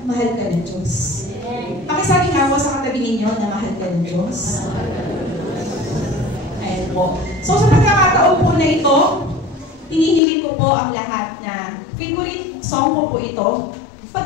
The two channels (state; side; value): drops out; right; at 10.2 s